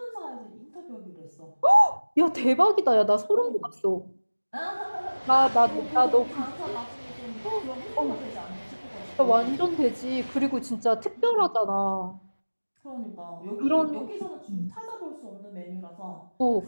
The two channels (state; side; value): inverted; both; correlation -1.00